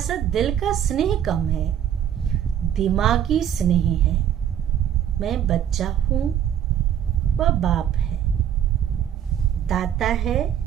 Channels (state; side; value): quieter; left; 9.9 dB